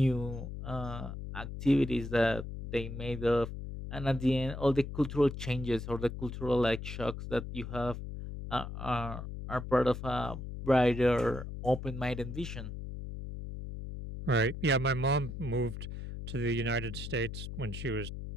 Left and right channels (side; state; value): left; noise; hum, 8 dB below the sound